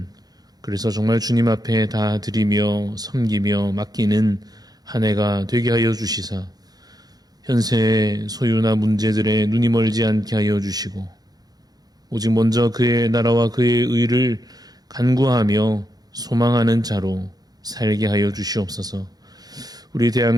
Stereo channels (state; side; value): late; left; 0.19 ms